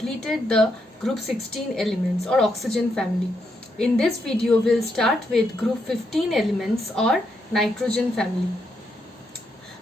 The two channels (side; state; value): both; normal; correlation 0.79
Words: the group 16 elements or oxygen family. In this video we will start with group 15 elements or nitrogen family.